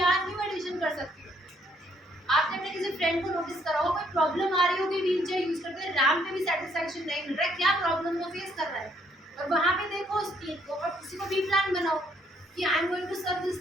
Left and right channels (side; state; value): both; normal; correlation 0.68